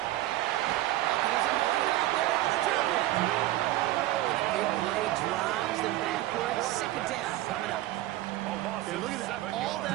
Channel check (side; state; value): left; quieter; 15.8 dB